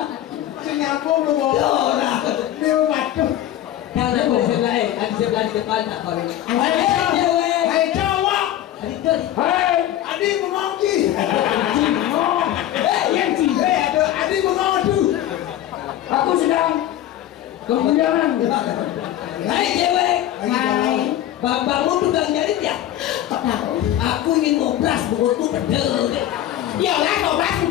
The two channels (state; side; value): quieter; right; 12.5 dB